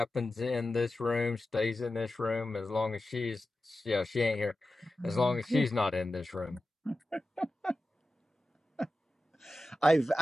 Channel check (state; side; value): normal; both; correlation 0.93